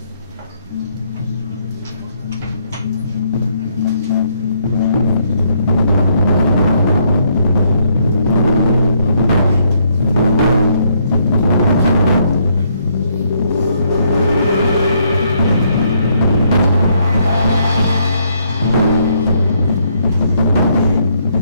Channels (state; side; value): inverted; both; correlation -0.71